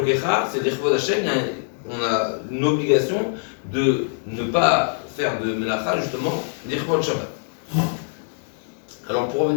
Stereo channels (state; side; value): silent; right; digital silence